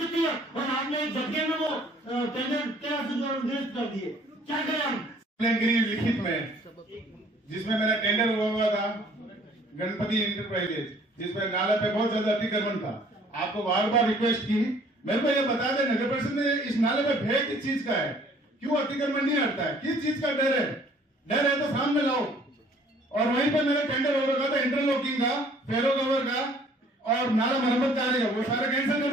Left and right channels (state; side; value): normal; both; correlation 0.57